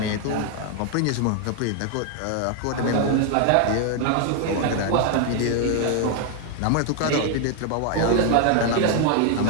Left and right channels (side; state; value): both; different; correlation 0.00